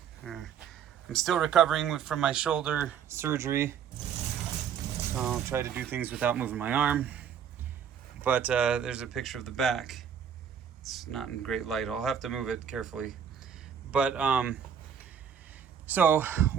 still recovering from my shoulder surgery. I'll try to do things without moving my arm. But there's a picture of the back. It's not in great light. I'll have to move it carefully. But so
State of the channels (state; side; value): quieter; left; 8.1 dB